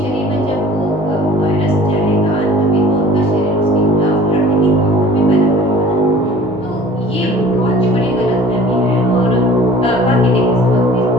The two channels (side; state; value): both; normal; correlation 0.48